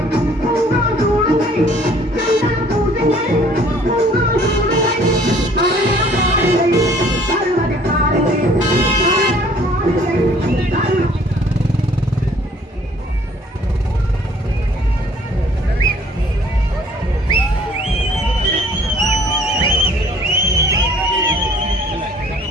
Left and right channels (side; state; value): both; normal; correlation 0.57